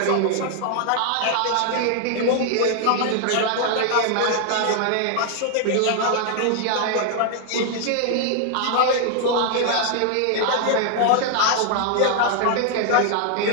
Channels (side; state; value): both; different; correlation 0.00